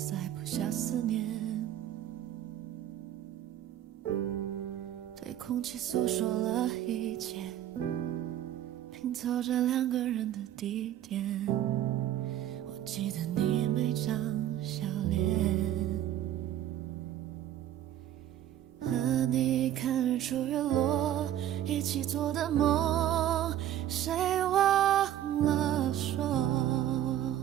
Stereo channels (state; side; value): quieter; left; 11.8 dB